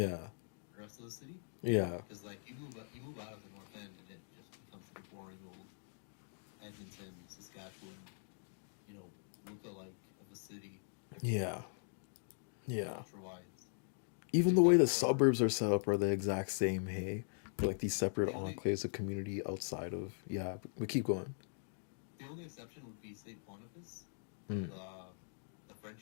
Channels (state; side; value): silent; right; digital silence